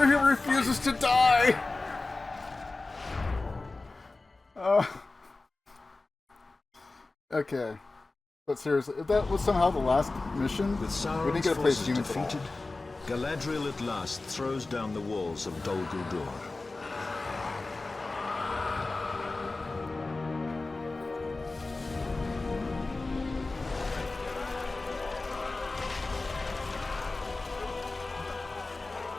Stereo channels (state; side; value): quieter; right; 3.4 dB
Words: he refuses to die. Okay. But seriously, if that was somehow the last mission, With we didn't Sauron's get to play forces humans at all. defeated, Galadriel at last throws down the walls of Dol Guldur.